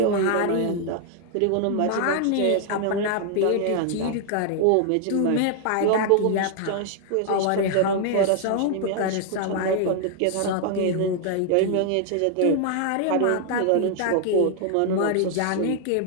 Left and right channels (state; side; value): different; both; correlation 0.00